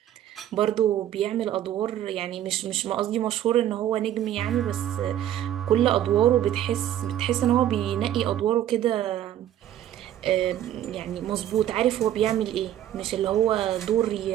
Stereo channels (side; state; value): left; quieter; 11.6 dB